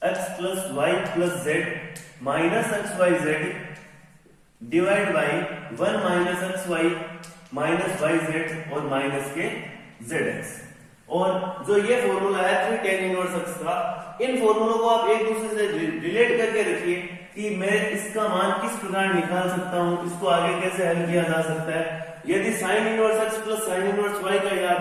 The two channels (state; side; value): identical; both; correlation 1.00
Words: x plus y plus z minus xyz divide by 1 minus xy minus yz और minus के zx। और जो ये formula है 3 tan इनवर्स x का, इन फॉर्मूलों को आप एक दूसरे से रिलेट करके रखिए कि मैं इसका मान किस प्रकार निकाल सकता हूं, इसको आगे कैसे हल किया जा सकता है। यदि sin inverse x plus sin inverse y का